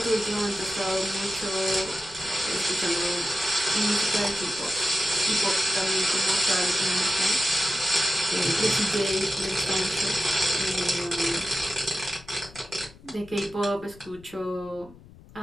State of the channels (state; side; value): noise; left; rumble, 22 dB below the sound